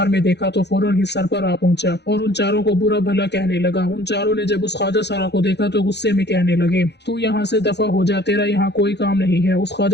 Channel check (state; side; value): late; right; 0.50 ms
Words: में देखा तो फौरन ही सर पर आ पहुंचा और उन चारों को बुरा भला कहने लगा। उन चारों ने जब उस ख्वाजा सरा को देखा तो गुस्से में कहने लगे, तू यहाँ से दफा हो जा, तेरा यहाँ कोई काम नहीं है। उस